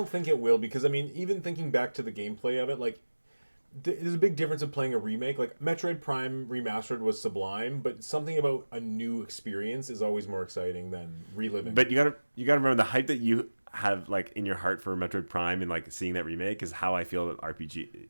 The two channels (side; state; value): both; inverted; correlation -1.00